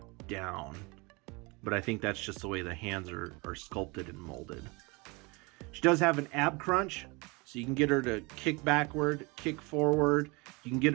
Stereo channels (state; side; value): quieter; left; 26.9 dB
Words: down. But I think that's just the way the hands are sculpted and molded. She does have an ab crunch, so you can get her to kick backward, kick forward. You can get